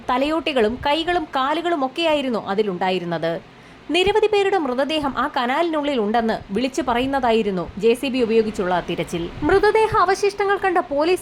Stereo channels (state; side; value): identical; both; correlation 1.00